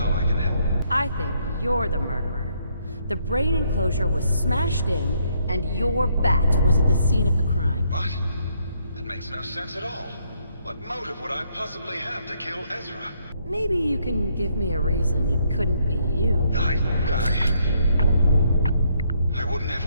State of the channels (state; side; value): inverted; both; correlation -0.72